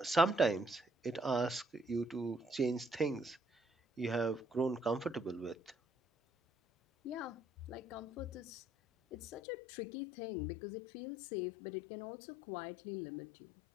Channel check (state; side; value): drops out; right; at 9.4 s